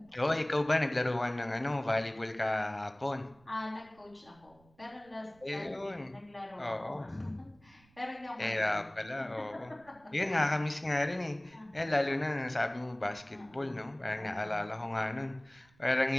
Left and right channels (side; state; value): right; noise; rumble, 30 dB below the sound